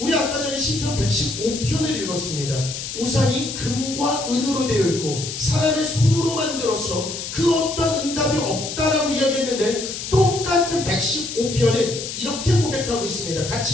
아까 전에 시편 115편을 읽었습니다. 우상이 금과 은으로 되어 있고 사람의 손으로 만들어서 그 어떤 응답이 없다라고 이야기했는데 똑같은 115편은 이렇게 고백하고 있습니다.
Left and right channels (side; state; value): left; noise; hiss, 7 dB below the sound